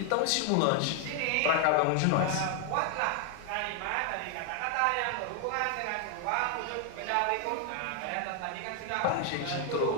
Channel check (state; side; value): different; both; correlation 0.00